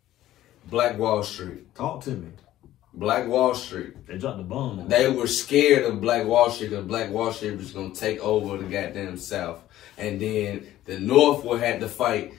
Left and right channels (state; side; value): quieter; right; 13.9 dB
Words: Black Wall Street. Talk to me. Black Wall Street. They dropped the bomb. They were scared of Black Wall Street because Black Wall Street was going to take over the goddamn South. And then the North would have to fight.